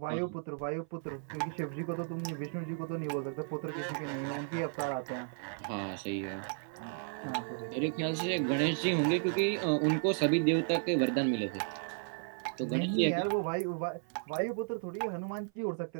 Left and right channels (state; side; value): silent; left; 55 dB below the other